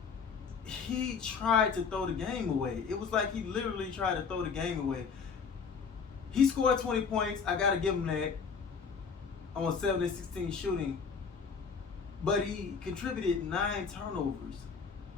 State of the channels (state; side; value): quieter; right; 5.8 dB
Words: He tried to throw the game away. It was like he literally tried to throw the game away. He scored 20 points. I got to give him that on 7 of 16 shooting. But he contributed 9 turnovers.